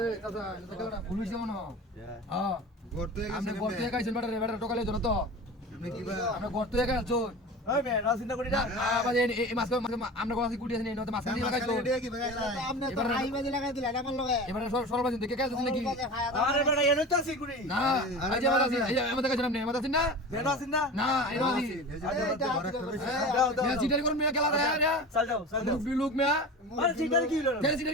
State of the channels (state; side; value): normal; both; correlation 0.33